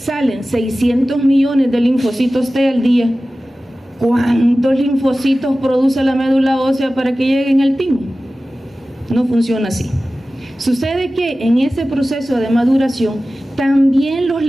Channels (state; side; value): normal; both; correlation 0.96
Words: 600 millones de linfocitos T al día. ¿Cuántos linfocitos produce la médula ósea para que lleguen al timo? No funciona así. Sucede que en ese proceso de maduración también los